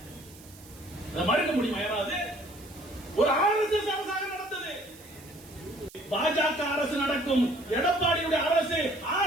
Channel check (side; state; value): right; noise; hiss, 21 dB below the sound